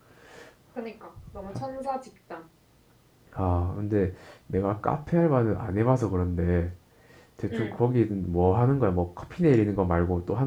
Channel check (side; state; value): both; identical; correlation 1.00